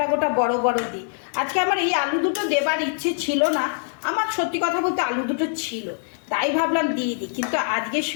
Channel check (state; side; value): silent; right; digital silence